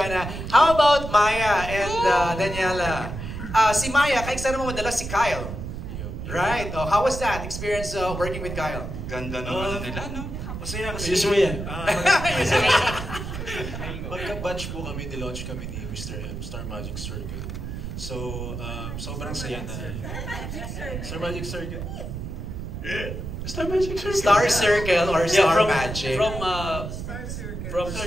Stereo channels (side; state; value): right; noise; rumble, 7 dB below the sound